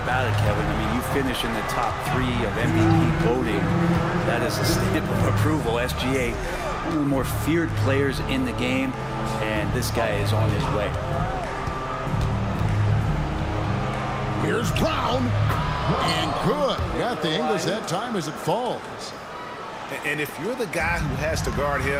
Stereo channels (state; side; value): identical; both; correlation 1.00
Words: it, Kevin. I mean, you finish in the top 3 of MVP voting. That is a stamp of approval. SGA, one of the more feared players in the game, and this guy is on his way. Here's Brown. And good. Got the English that time as it falls. And if you're the guy who has to guard